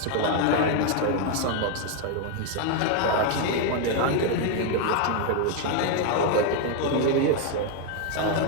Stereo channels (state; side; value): different; both; correlation 0.01